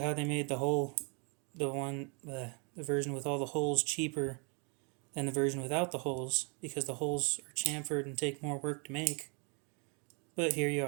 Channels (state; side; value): quieter; left; 35.4 dB